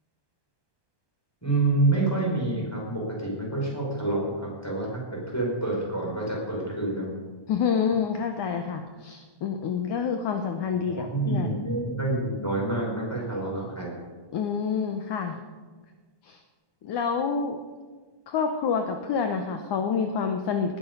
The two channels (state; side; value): late; right; 1.2 ms